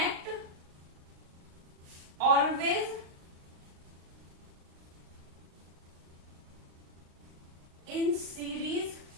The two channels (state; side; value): late; left; 36 ms